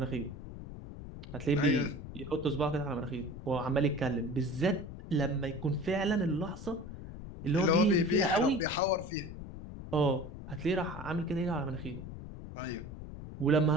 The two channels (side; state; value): left; noise; rumble, 11 dB below the sound